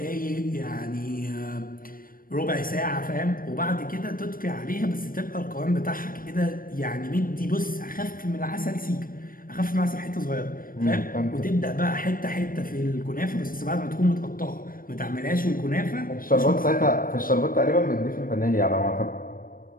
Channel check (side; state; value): right; late; 0.41 ms